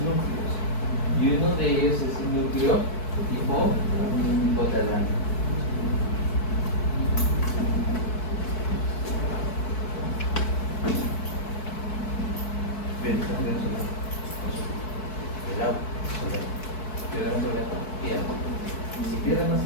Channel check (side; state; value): right; late; 4.6 ms